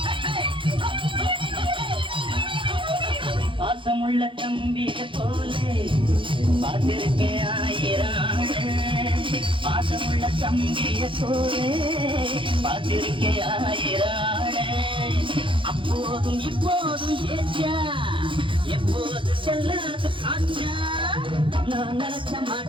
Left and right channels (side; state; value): left; late; 0.25 ms